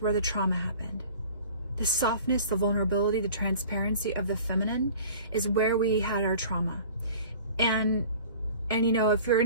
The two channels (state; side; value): inverted; both; correlation -0.45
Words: where the trauma happened. The softness, the vulnerability, the transparency of the feminine is where we had our trauma. And if you're